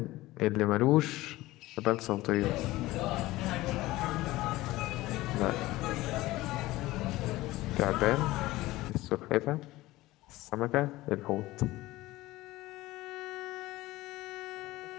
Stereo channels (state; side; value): quieter; right; 18.1 dB